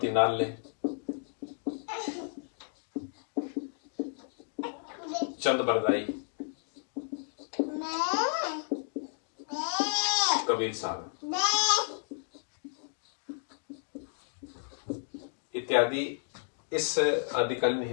नाल्य, चंद्रबरदाई, कबीर साहब इत्यादि इस आदिकालीन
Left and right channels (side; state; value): right; silent; digital silence